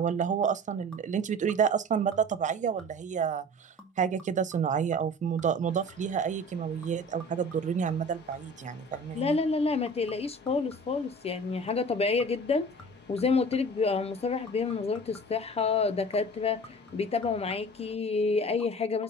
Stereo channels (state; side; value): normal; both; correlation 0.40